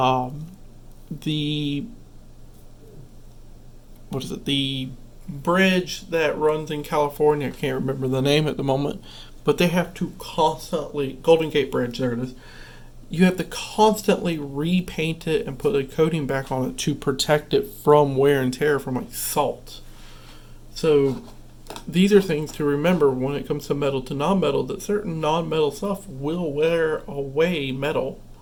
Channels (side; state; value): both; identical; correlation 1.00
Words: the what is it? The bridge that runs in California. I can't remember the name at the moment, but they have to constantly Golden Gate Bridge. There it is. You have to constantly repaint it and put a coating back on it to protect it from wear and tear from like salt. So these are things to remember when it comes to metal to non-metal, that certain non-metal stuff will wear away metal.